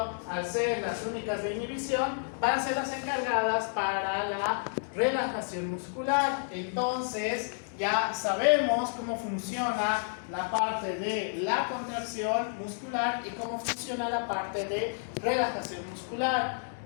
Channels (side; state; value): right; silent; digital silence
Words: al ser las únicas de inhibición, van a ser las encargadas para la relajación muscular. Entonces, ya sabemos cómo funciona la parte de la contracción muscular y cómo funciona la parte de relajación muscular.